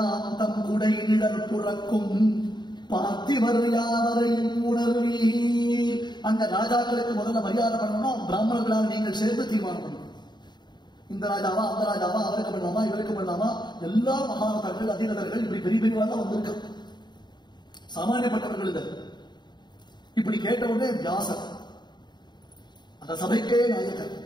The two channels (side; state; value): right; late; 0.21 ms